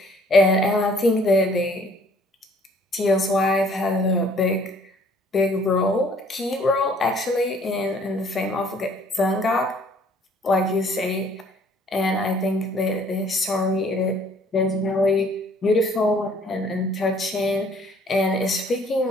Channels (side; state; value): both; normal; correlation 0.58